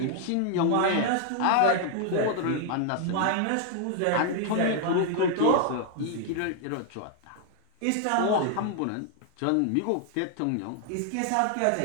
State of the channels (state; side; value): different; both; correlation 0.00